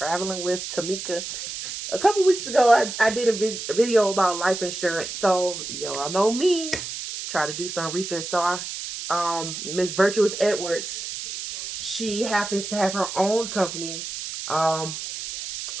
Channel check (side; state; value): right; noise; hiss, 7 dB below the sound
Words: with Tamika. A couple weeks ago, I did a video about life insurance. So, y'all know me, try to do some research. So, Miss Virtuous Edwards, she happens to have her own company um,